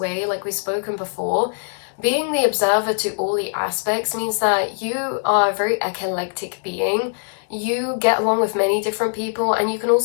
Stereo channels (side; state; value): right; silent; digital silence